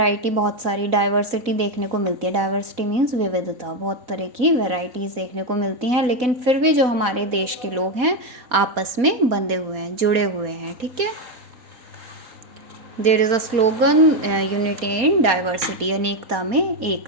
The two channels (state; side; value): late; left; 4.1 ms